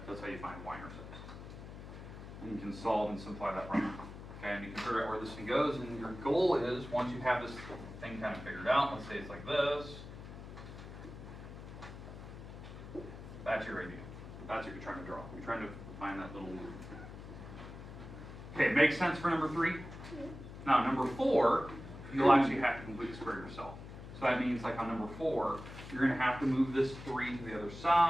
how you find y-intercepts. And you can solve and simplify that problem. Okay, and you can figure out where this thing goes, and your goal is, once you have this thing kind of figured out, let's say it's like this, that's your idea. That's what you're trying to draw. You're trying to find that little loop. Okay, makes sense for number 3? Now, number 4, you'll actually have to complete the square yourself. So that means, like on number 4, you're going to have to move this 3 to the other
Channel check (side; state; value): left; noise; hum, 12 dB below the sound